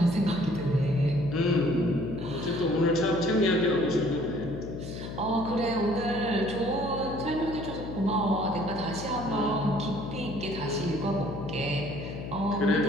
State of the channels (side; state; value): left; noise; hum, 8 dB below the sound